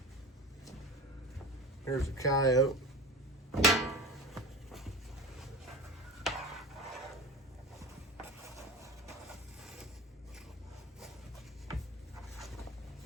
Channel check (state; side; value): normal; both; correlation 0.31